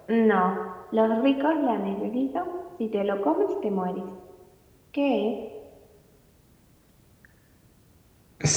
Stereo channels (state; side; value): identical; both; correlation 1.00